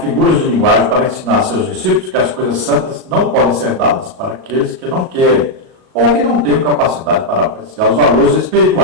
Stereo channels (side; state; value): left; late; 37 ms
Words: de linguagem para ensinar a seus discípulos que as coisas santas não podem ser dadas para aqueles que não querem ou que não têm capacidade para apreciar os valores